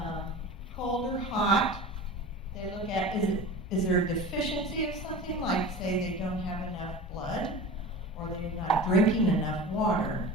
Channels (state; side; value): normal; both; correlation 0.33